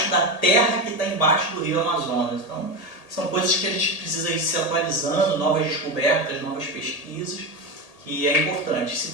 da terra que está embaixo do Rio Amazonas. Então, são coisas que a gente precisa ir se atualizando, novas descobertas, novas pesquisas, que é importante. Se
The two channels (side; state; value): right; late; 1.8 ms